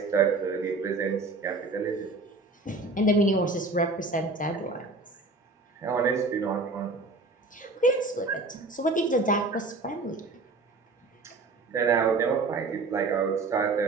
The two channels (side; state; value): left; quieter; 3.5 dB